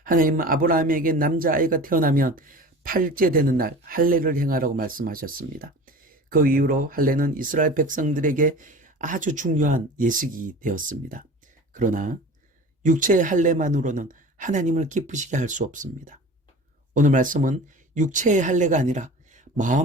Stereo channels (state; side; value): normal; both; correlation 0.38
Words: 하나님은 아브라함에게 남자아이가 태어나면 8째 되는 날 할례를 행하라고 말씀하셨습니다. 그 이후로 할례는 이스라엘 백성들에게 아주 중요한 예식이 되었습니다. 그러나 육체의 할례만으로는 하나님을 기쁘시게 할 수 없습니다. 오늘 말씀은 육체의 할례가 아니라